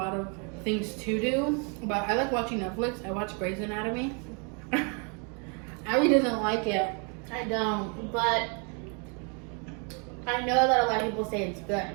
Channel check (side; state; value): left; quieter; 36.3 dB